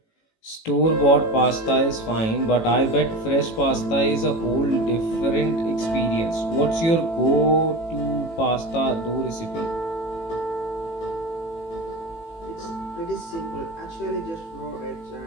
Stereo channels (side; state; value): right; late; 18 ms